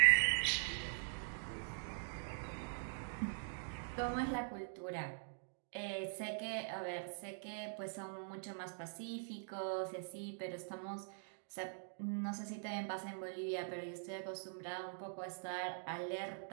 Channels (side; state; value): left; silent; digital silence